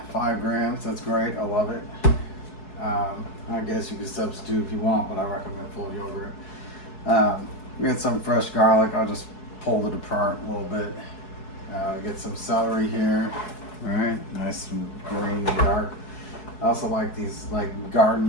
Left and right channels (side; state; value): right; late; 4.7 ms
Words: 5 grams. That's great. I love it. I guess you can substitute if you want, but I recommend full yogurt. We got some fresh garlic. I'll just pull it apart a little bit. Get some celery here. All right, nice and green and dark. I also like these